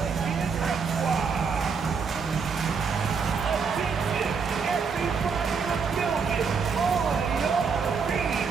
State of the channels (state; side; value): quieter; left; 5.6 dB